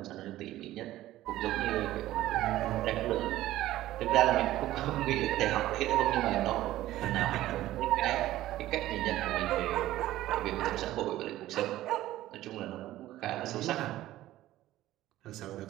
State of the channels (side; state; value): left; quieter; 15.1 dB